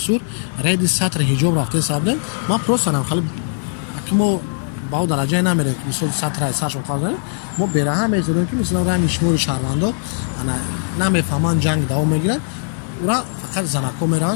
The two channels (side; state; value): right; silent; digital silence